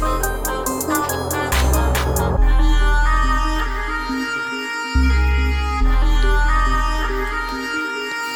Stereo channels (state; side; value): identical; both; correlation 1.00